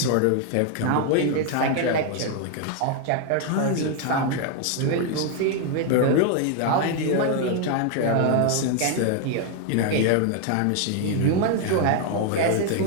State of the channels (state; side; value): different; both; correlation 0.00